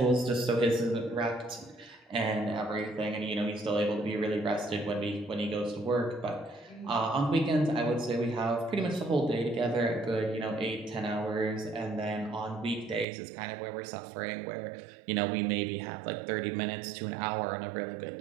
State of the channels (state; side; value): drops out; left; at 13.1 s